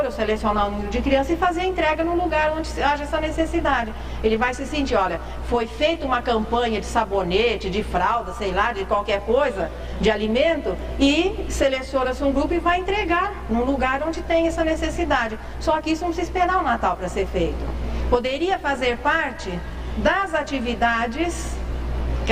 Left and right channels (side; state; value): both; identical; correlation 1.00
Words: eu selecionar o número de crianças e fazer a entrega no lugar onde haja essa necessidade. Ele vai se sentir, olha, foi feita uma campanha de sabonete, de fralda, sei lá, de qualquer coisa, de alimento, e seleciona-se um grupo e vai entregar num lugar onde tem essa necessidade. Só que isso não precisa esperar o Natal para ser feito. Poderia fazer parte das atividades,